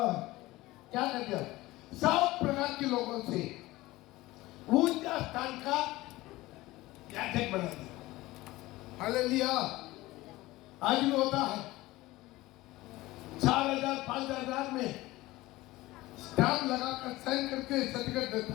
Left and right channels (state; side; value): quieter; right; 18.7 dB